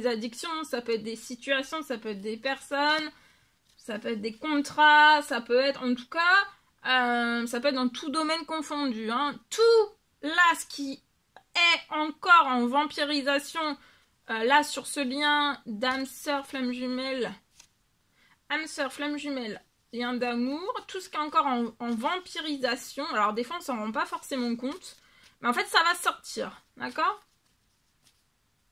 addictions, ça peut être des situations, ça peut être des personnes, ça peut être des contrats, ça peut être, en tout cas, ça peut être dans tout domaine confondu. Hein. Tout là, ce qui est encore en vampirisation, là sur ce lien d'âme sœur flamme jumelle, lien d'amour, tout ce qui est encore en vampirisation. Alors des fois on s'en rend pas forcément compte, mais en fait ça va sortir, d'accord?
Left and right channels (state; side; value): identical; both; correlation 1.00